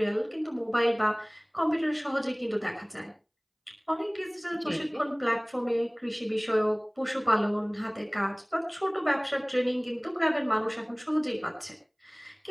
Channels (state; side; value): identical; both; correlation 1.00